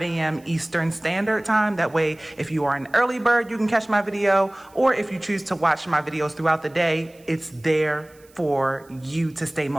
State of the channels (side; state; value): right; noise; hiss, 29 dB below the sound